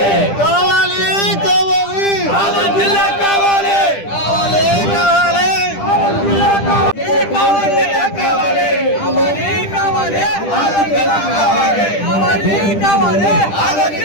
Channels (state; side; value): late; right; 10 ms